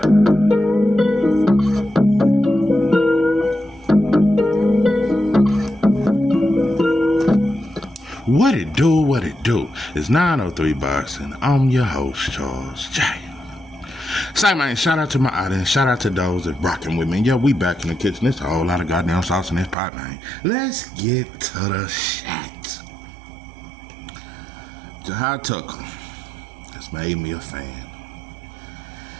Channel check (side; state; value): left; drops out; at 19.8 s